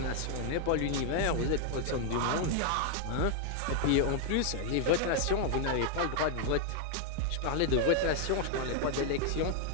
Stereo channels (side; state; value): both; different; correlation 0.00